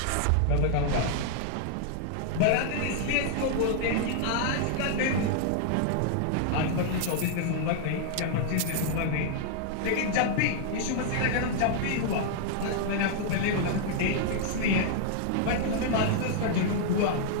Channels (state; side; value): different; both; correlation -0.01